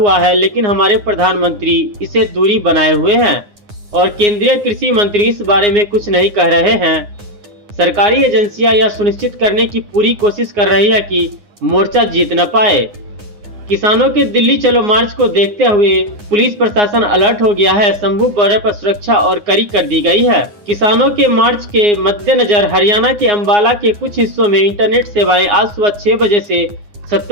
है, लेकिन हमारे प्रधानमंत्री इसे दूरी बनाए हुए हैं और केंद्रीय कृषि मंत्री इस बारे में कुछ नहीं कह रहे हैं। सरकारी एजेंसियां यह सुनिश्चित करने की पूरी कोशिश कर रही है कि मोर्चा जीत न पाए। किसानों के दिल्ली चलो मार्च को देखते हुए पुलिस प्रशासन अलर्ट हो गया है। शंभू बॉर्डर पर सुरक्षा और कड़ी कर दी गई है। किसानों के मार्च के मद्देनजर हरियाणा के अंबाला के कुछ हिस्सों में इंटरनेट सेवाएं आज सुबह 6 बजे से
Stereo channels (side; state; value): left; late; 9.7 ms